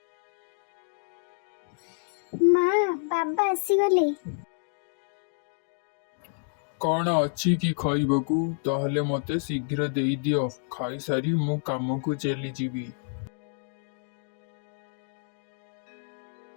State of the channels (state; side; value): silent; right; digital silence